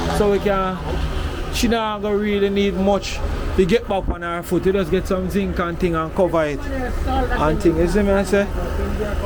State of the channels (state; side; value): identical; both; correlation 1.00